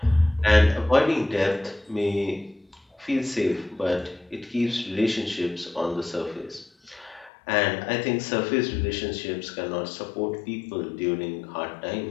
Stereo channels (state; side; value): drops out; right; at 7.3 s